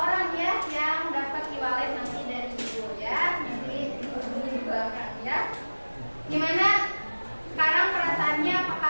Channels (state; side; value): inverted; both; correlation -1.00